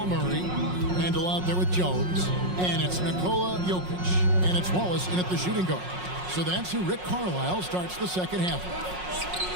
Murray, Randall out there with Jones, and it's Nikola Jokic, and it's Wallace in at the shooting guard. So that's who Rick Carlisle starts the second half.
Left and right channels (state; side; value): late; left; 5.5 ms